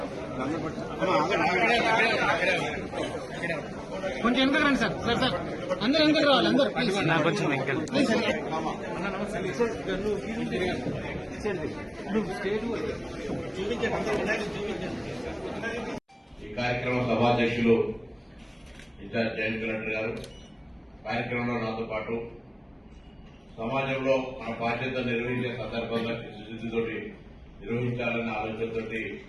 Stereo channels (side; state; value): both; identical; correlation 1.00